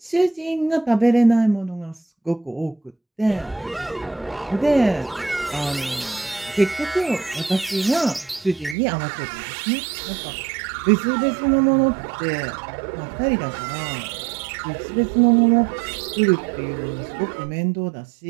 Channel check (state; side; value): drops out; left; at 8.8 s